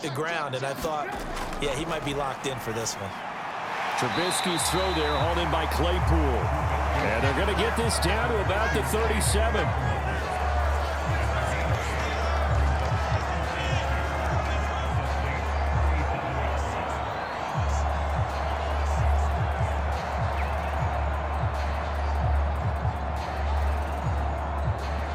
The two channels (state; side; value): identical; both; correlation 1.00